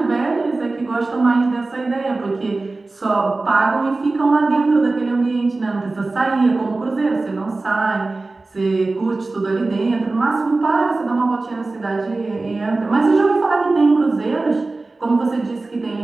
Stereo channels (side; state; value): left; quieter; 3.4 dB